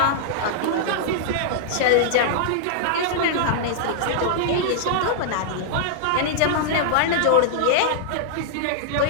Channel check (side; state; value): both; different; correlation -0.02